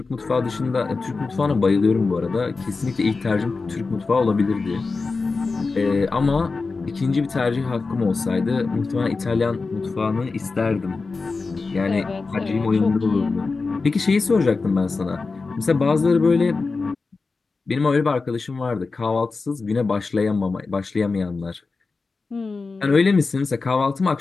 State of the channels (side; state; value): right; quieter; 4.1 dB